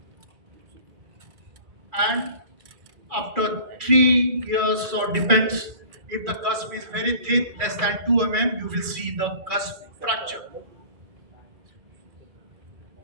And after 3 years, or depends, if the cusp is very thin, less than 2 mm, you will see the cusp fracture.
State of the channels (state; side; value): late; left; 2.3 ms